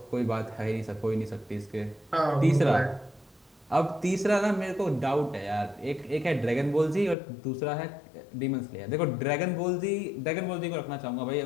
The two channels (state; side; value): drops out; right; at 7.2 s